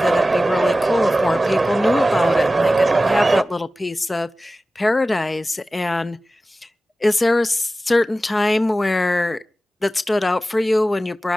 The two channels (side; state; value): both; normal; correlation 0.95